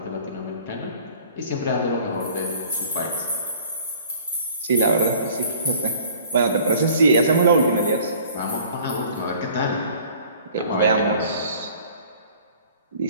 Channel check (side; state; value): both; inverted; correlation -0.50